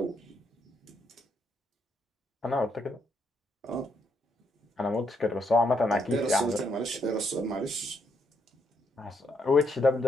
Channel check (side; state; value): both; normal; correlation 0.76